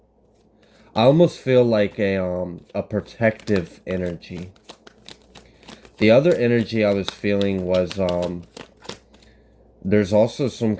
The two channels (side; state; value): both; identical; correlation 1.00